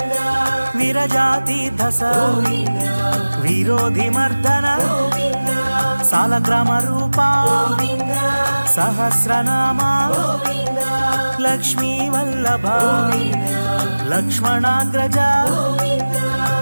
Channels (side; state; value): both; inverted; correlation -1.00